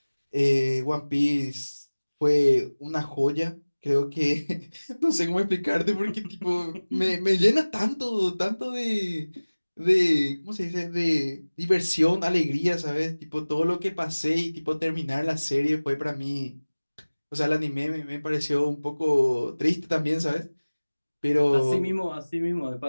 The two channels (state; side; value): inverted; both; correlation -1.00